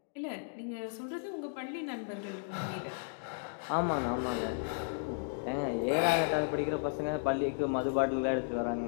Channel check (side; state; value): right; silent; digital silence